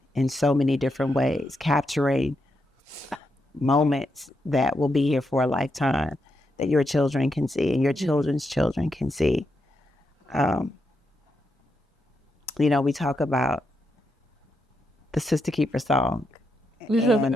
in so many different ways, capturing moments that will be here for a lifetime that your children can see and your children's children can see. We talk about the SistaKeeper song,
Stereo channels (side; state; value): both; normal; correlation 0.83